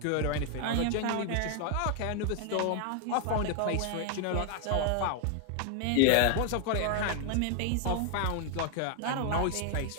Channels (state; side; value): different; both; correlation 0.00